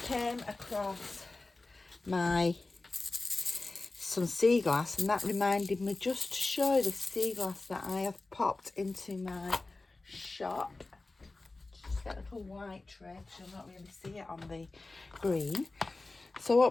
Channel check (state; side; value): quieter; right; 3.3 dB